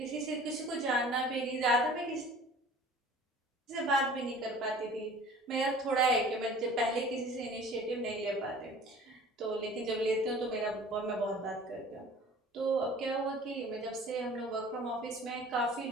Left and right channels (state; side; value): normal; both; correlation 0.46